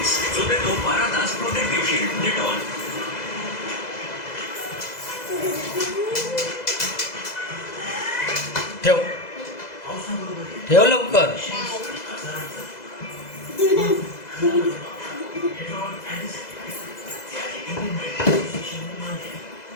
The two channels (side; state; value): right; late; 2.0 ms